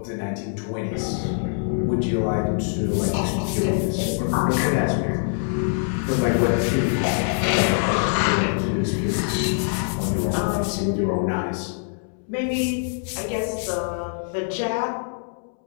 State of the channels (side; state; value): right; silent; 63 dB below the other